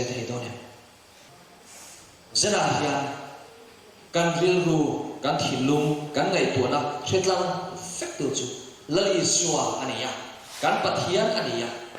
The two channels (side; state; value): both; identical; correlation 1.00